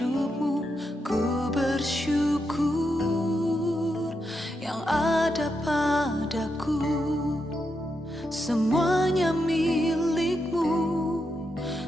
Ku bersyukur yang ada padaku. Semuanya milikmu.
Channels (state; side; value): normal; both; correlation 0.84